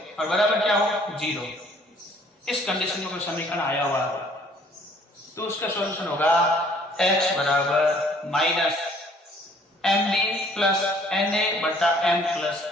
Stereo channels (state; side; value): normal; both; correlation 0.59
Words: और बराबर क्या हो 0। इस कंडीशन में कोई समीकरण आया हुआ तो उसका सॉल्यूशन होगा x बराबर -mb + na बटा m +